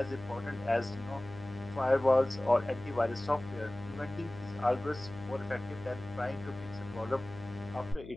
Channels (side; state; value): left; noise; hum, 15 dB below the sound